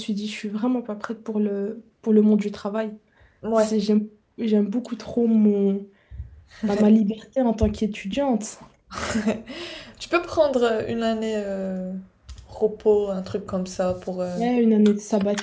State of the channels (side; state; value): both; identical; correlation 1.00